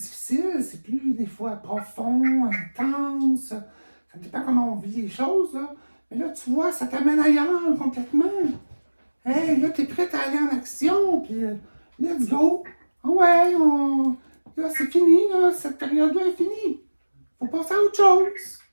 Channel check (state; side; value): inverted; both; correlation -1.00